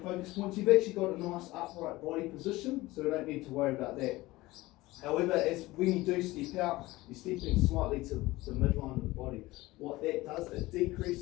focus points, you've actually got a nice upright body position, so we don't need to worry about that. However, when you do step out, you're stepping slightly to the midline of the body. What that does, it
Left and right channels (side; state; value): right; quieter; 19.3 dB